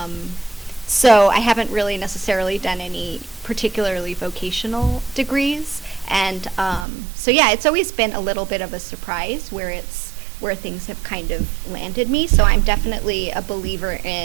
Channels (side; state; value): left; drops out; at 6.9 s